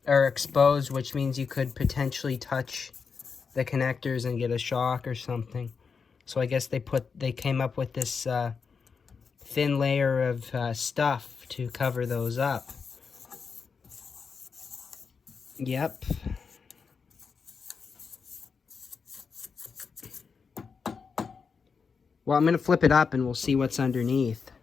are exposed, which means you could potentially touch the connectors and get a shock or something. So I guess they came up with this thin layer of stuff to cover those up. Yep. Well, I'm gonna flip it up and we'll see what's underneath.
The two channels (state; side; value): quieter; right; 5.5 dB